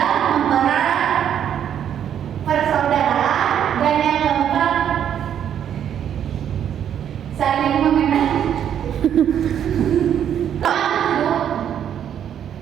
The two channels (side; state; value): left; quieter; 9.4 dB